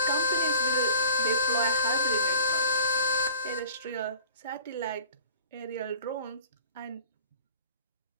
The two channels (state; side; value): inverted; both; correlation -0.47